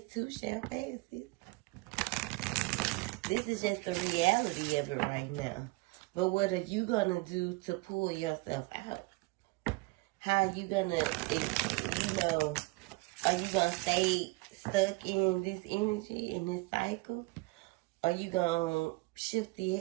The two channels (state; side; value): quieter; left; 23.9 dB